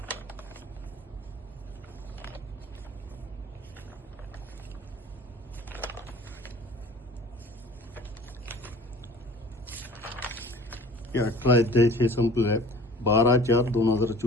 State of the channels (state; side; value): normal; both; correlation 0.46